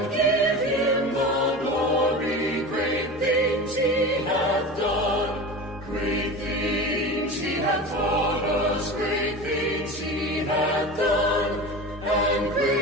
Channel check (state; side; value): normal; both; correlation 0.30